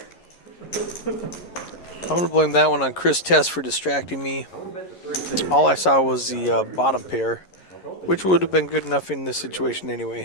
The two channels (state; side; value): late; right; 11 ms